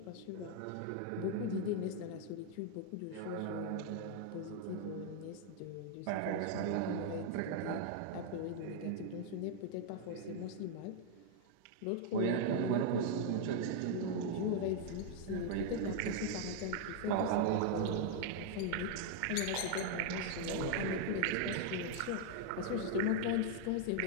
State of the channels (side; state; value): both; different; correlation 0.00